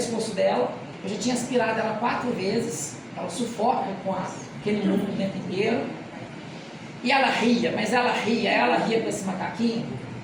dela. Eu já tinha aspirado ela 4 vezes. Ela sufoca com aquele mundo o tempo inteiro. E ela ria, mas ela ria com esse macaquinho.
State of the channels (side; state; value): both; identical; correlation 1.00